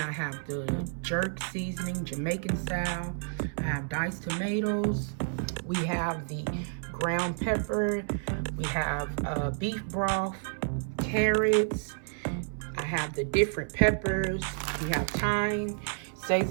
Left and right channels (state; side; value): silent; left; 58 dB below the other